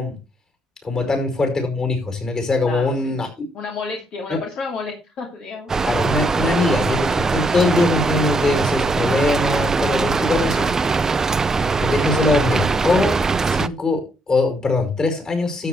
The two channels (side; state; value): both; normal; correlation 0.74